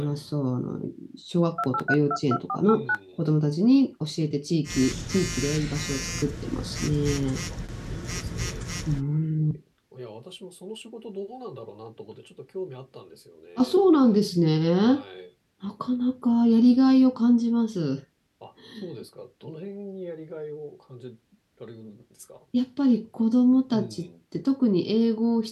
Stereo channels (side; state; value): both; identical; correlation 1.00